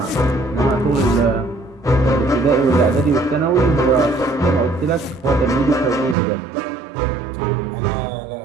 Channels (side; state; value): left; drops out; at 6.2 s